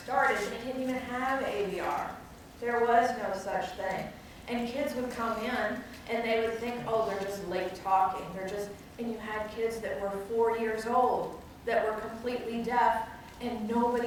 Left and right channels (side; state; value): both; identical; correlation 1.00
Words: they didn't even have AVR. There was no such thing. And kids would come in and they would think, oh, they're just late talking. And you had kids that were 4 years old that were completely deaf, and